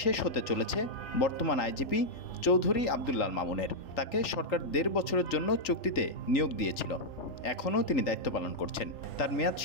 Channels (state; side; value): late; right; 3.4 ms